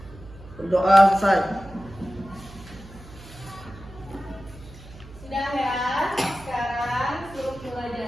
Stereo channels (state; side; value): noise; right; hum, 18 dB below the sound